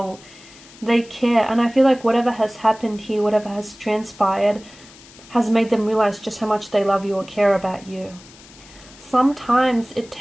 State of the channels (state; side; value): noise; left; hiss, 22 dB below the sound